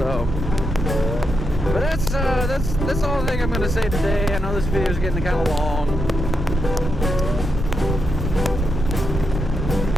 but that's all I think I'm going to say today. I know this video is getting kind of long,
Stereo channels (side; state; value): right; noise; rumble, 3 dB below the sound